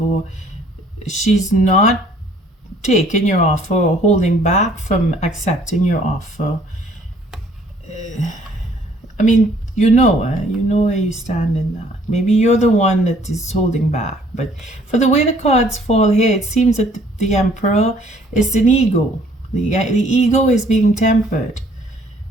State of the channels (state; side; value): normal; both; correlation 0.60